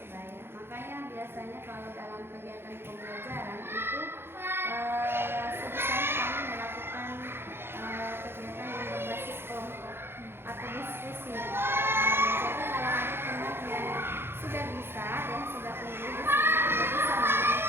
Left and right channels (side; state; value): left; late; 0.11 ms